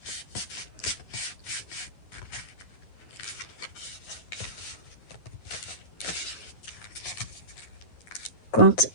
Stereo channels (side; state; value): right; late; 10 ms